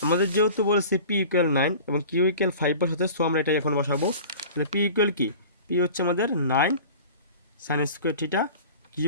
আমাদের যেহেতু বলেছে পি ইকুয়াল 9 এবং কিউ ইকুয়াল 5 বসাতে, সো আমরা এটাই এখন বসাবো। তাহলে পি ইকুয়াল কি, পি হচ্ছে আমাদের 9 সাইন স্কোয়ার থিটা,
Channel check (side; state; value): both; inverted; correlation -0.41